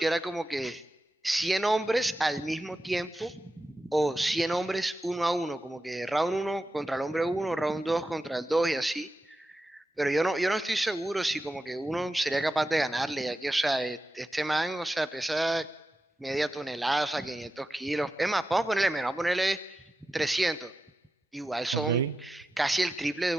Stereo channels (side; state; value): both; normal; correlation 0.90